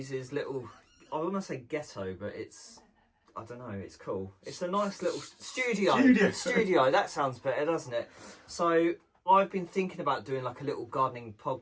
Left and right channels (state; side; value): identical; both; correlation 1.00